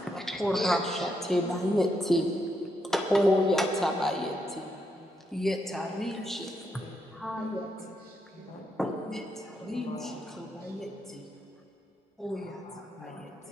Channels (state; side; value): normal; both; correlation 0.80